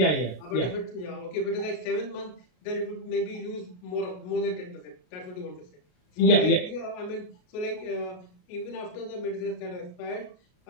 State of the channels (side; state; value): right; late; 33 ms